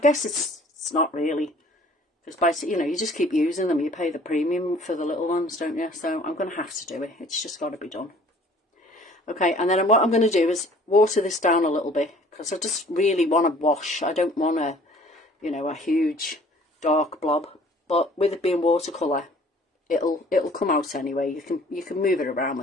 it's not really. Because, you know, you just keep using them. You pay the premium for the little ones, don't you? So I'm going to have to do it. It's just got to be done. Okay, and then what I'm going to do is water this down a little bit. Because I just really want to wash. I don't want a, you know, a huge dark blob. But with it being watercolour, it'll come out anyway. You can move it around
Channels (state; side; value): normal; both; correlation 0.53